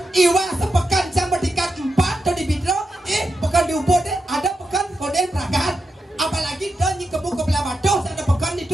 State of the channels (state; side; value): normal; both; correlation 0.86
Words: Iwa sepekan cang berdikat 4 tu di Bidro. Pekan di Ubud ada pekan koden peragat. Apalagi tu ni kebun kebelah Batu ada pekan